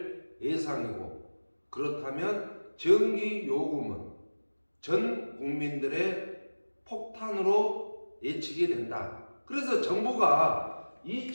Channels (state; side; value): inverted; both; correlation -1.00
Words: 예상이고, 그렇다면 전기 요금은 전 국민들의 폭탄으로 예측이 된다. 그래서 정부가